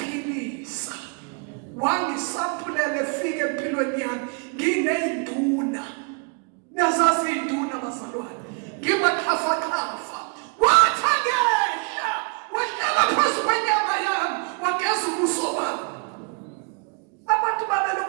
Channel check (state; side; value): quieter; left; 36.5 dB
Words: wangisampulele fike empilweni yami ngineyinduna niyazazi induna bazalwane ngibaxhafaxhafa wathi angehla wahlala phezu kwenyama yami wageza ubuso bami abantu